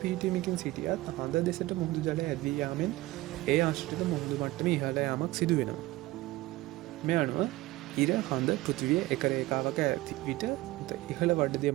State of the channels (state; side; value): quieter; left; 18.7 dB